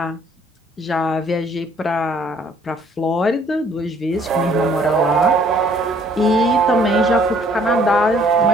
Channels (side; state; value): both; normal; correlation 0.60